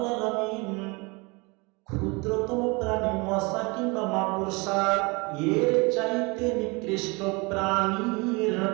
আলামিন ক্ষুদ্রতম প্রাণী মশা কিংবা মাকড়সা এর চাইতে নিকৃষ্ট প্রাণীর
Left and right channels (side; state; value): left; quieter; 27.6 dB